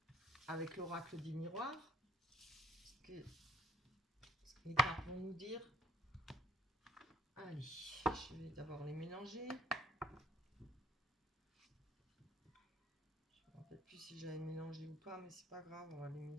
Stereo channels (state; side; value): normal; both; correlation 0.58